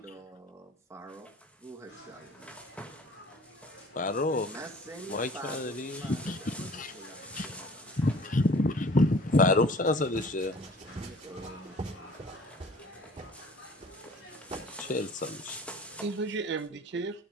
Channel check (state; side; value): normal; both; correlation 0.49